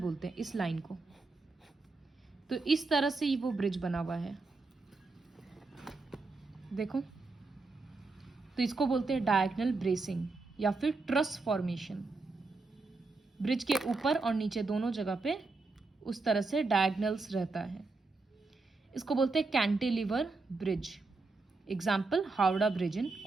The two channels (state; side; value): quieter; left; 3.7 dB